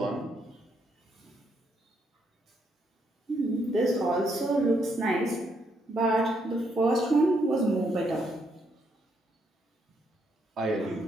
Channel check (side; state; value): both; normal; correlation 0.75